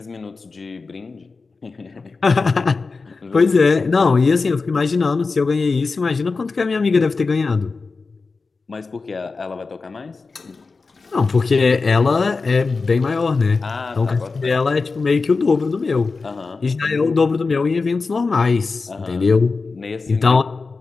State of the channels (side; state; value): right; quieter; 4.2 dB